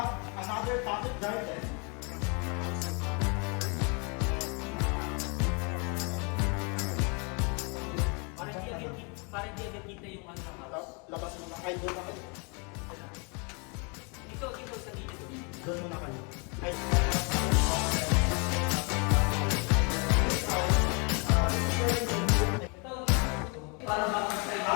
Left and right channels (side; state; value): right; quieter; 33.7 dB